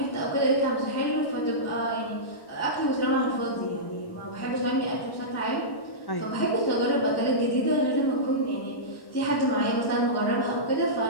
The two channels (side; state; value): right; late; 1.1 ms